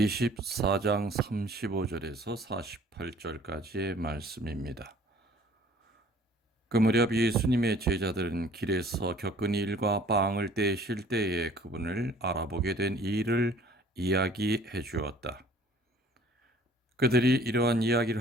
35절에서 48절까지의 말씀입니다. 그 무렵 예수님의 제자들은 길에서 겪은 일과 빵을 떼실 때에 그분을 알아보게 된 일을 이야기해 주었다. 그들이 이러한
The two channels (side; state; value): both; normal; correlation 0.54